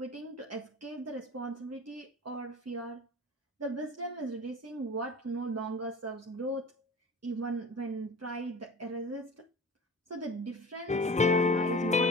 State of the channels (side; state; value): both; normal; correlation 0.38